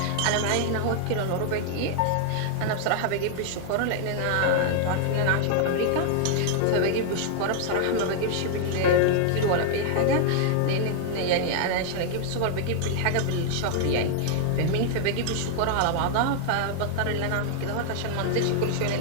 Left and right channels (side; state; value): both; different; correlation 0.00